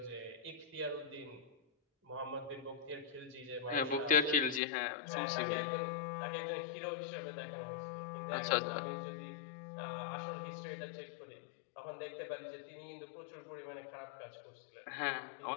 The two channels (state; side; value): drops out; right; at 4.6 s